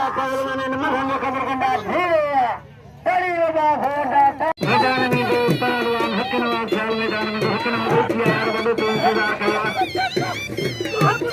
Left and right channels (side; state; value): both; identical; correlation 1.00